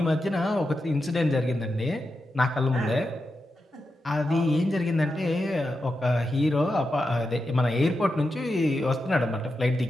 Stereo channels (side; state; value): both; normal; correlation 0.88